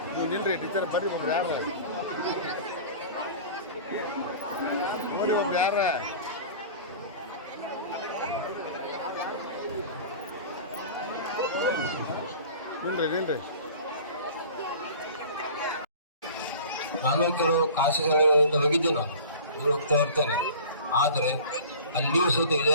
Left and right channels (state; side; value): inverted; both; correlation -0.40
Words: ನೀವು ನಿಲ್ರಿ ಟೀಚರ್ ಬರ್ರಿ. ಒಬ್ರು ಯಾರ ನೋಡಿ, ಒಬ್ರು ಯಾರ ನಿಲ್ರಿ. ನಾನು ಕೆಲವು ಖಾಸಗಿಗಳಿಂದ ಹೋಗಿದ್ದೆ, ನಾನು ಹೋಗ್ತಾ ಇರ್ತೇನೆ. ಆದರೆ ಅಲ್ಲಿಯೂ ಸಹಿತ ಇದೇ